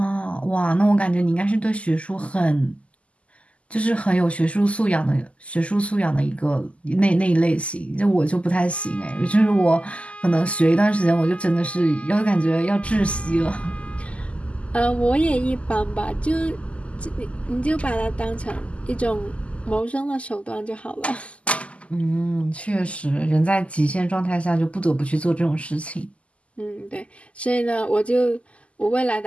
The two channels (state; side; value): late; right; 0.060 ms